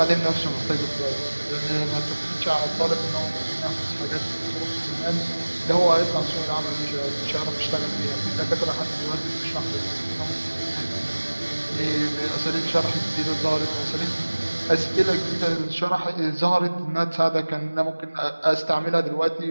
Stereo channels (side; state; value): both; inverted; correlation -1.00